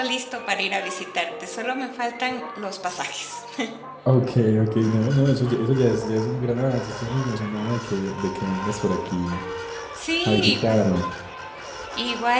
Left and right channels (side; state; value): both; identical; correlation 1.00